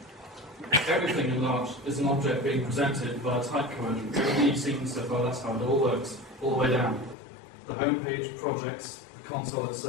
Everything in Larch is an object being presented via type conversion. Everything you've seen so far, that's how it all works, all the way down. The home page, projects, the console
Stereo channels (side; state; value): right; drops out; at 7.2 s